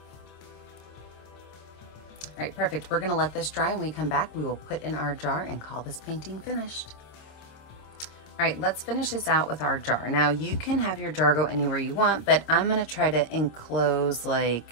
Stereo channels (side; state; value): right; late; 26 ms